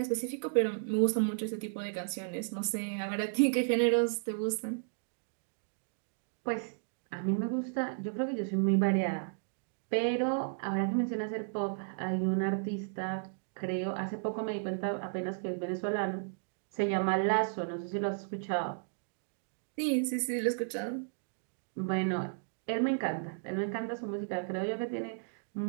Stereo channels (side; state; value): left; silent; digital silence